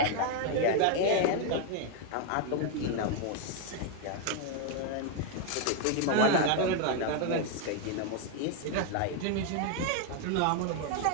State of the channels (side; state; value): both; different; correlation 0.00